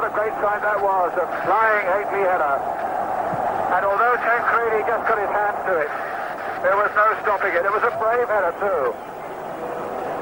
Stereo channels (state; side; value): identical; both; correlation 1.00